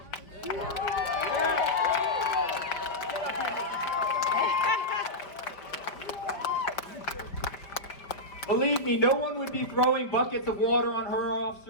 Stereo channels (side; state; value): right; late; 5.2 ms